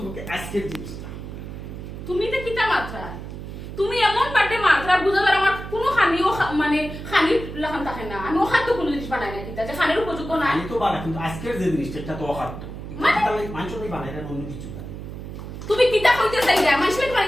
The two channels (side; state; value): right; noise; hum, 10 dB below the sound